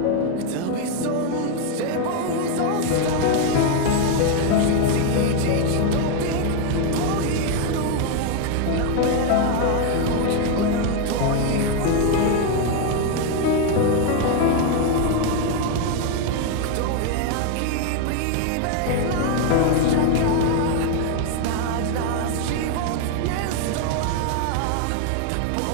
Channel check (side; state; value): both; different; correlation 0.01